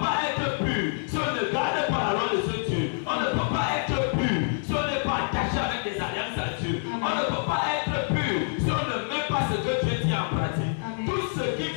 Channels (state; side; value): silent; right; 60 dB below the other